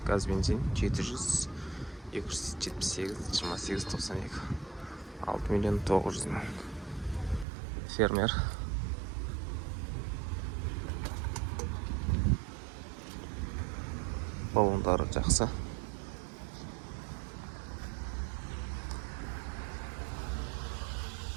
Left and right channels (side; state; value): left; drops out; at 7.5 s